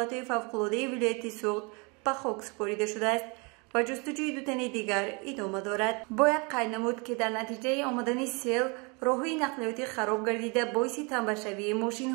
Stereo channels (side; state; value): left; quieter; 30.9 dB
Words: فوق‌العاده ولایت سوخت به خاک سپرده شده است و جستجوی 2 تن دیگر ادامه دارد. باید قید نمود که در نتیجه آمدن سیل راههای نقلیاتی خراب گردیده باعث تنبشوی ماشین